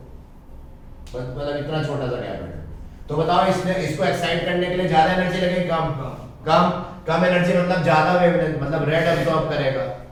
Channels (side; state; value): both; identical; correlation 1.00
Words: मतलब इतना छोटा सा गैप है, तो बताओ इसने इसको एक्साइट करने के लिए ज्यादा एनर्जी लगेगी कम? कम एनर्जी मतलब ज्यादा वेवलेंथ, मतलब रेड एब्सॉर्ब करेगा।